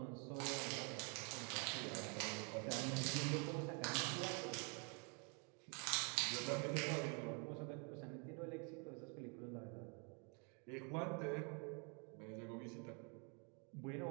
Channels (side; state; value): left; quieter; 35.7 dB